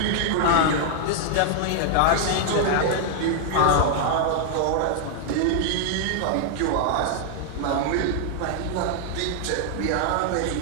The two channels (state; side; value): different; both; correlation -0.01